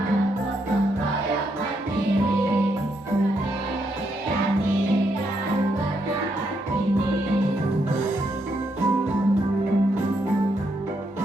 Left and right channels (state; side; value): normal; both; correlation 0.77